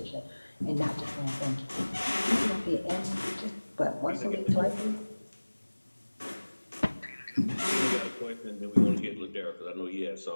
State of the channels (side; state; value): both; inverted; correlation -1.00